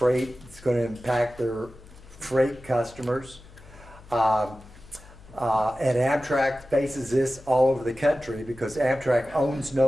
It's going to impact their freight customers. And Amtrak faces this all over the country because Amtrak owns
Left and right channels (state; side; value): noise; left; hum, 21 dB below the sound